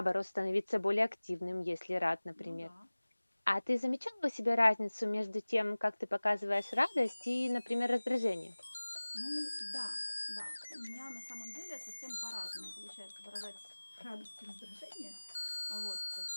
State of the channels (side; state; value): both; inverted; correlation -1.00